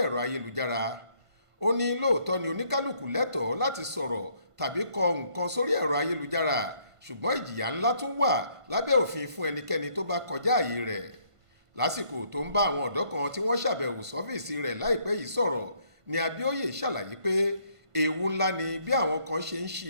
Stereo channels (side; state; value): left; late; 1.5 ms